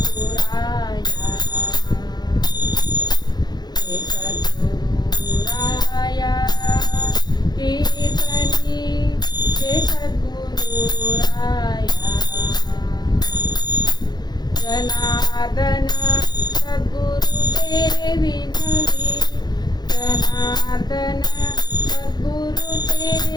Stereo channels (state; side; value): late; right; 0.20 ms